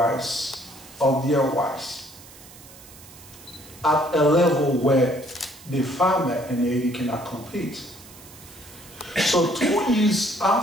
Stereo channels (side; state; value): right; noise; hiss, 20 dB below the sound